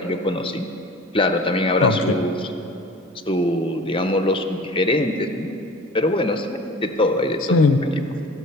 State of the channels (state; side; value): normal; both; correlation 0.41